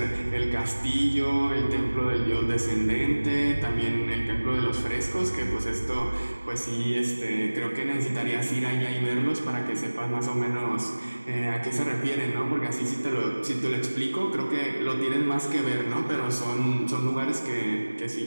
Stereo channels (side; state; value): both; inverted; correlation -1.00